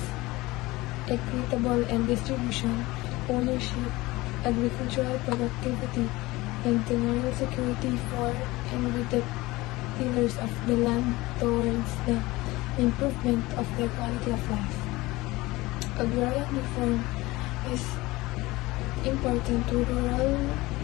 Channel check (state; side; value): quieter; right; 20.4 dB